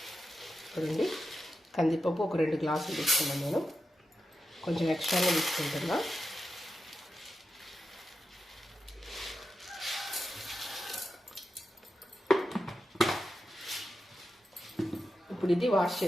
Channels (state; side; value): normal; both; correlation 0.90